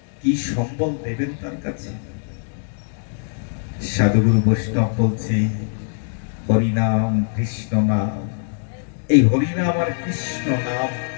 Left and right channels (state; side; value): silent; right; digital silence